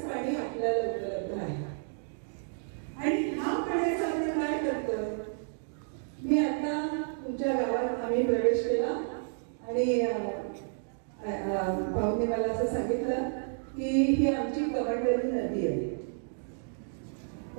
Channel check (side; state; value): left; silent; digital silence